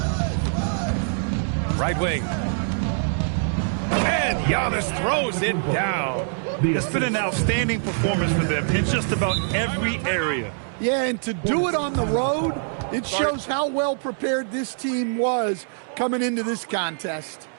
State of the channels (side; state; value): left; silent; 63 dB below the other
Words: Right wing. And Giannis throws it down. It's been an outstanding performance for them in just about every area. Yeah, and to do it on the road, it shows how well prepared this team was coming into this contest.